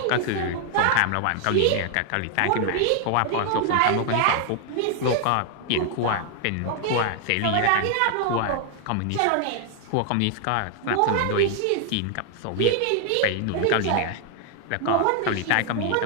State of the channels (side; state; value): both; different; correlation 0.00